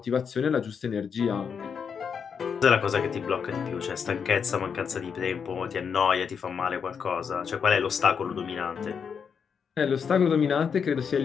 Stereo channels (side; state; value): right; quieter; 6.6 dB